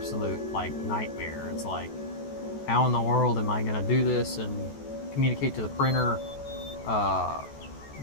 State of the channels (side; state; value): right; late; 14 ms